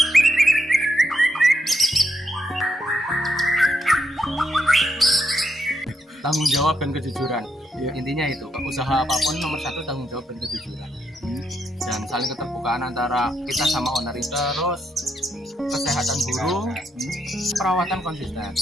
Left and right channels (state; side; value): normal; both; correlation 0.79